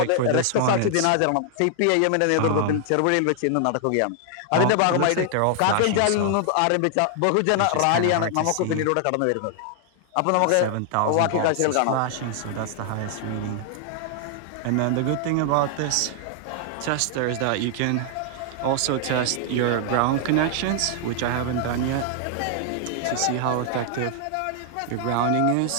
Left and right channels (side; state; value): both; different; correlation 0.00